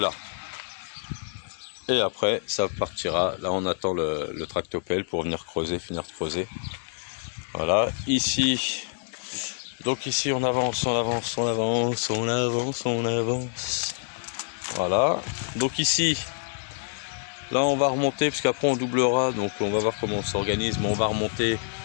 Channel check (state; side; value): silent; right; digital silence